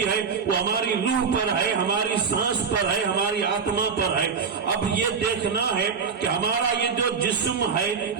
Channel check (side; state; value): left; quieter; 5.9 dB